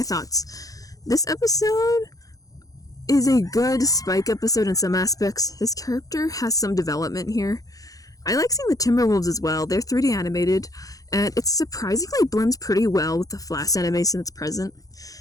thoughts. This episode is a good Spike episode in some aspects. His character has some development here. I like seeing the Timberwolves as well. They're 3D animated, and it surprisingly blends pretty well with the Flash animation that's present.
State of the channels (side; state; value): right; late; 0.17 ms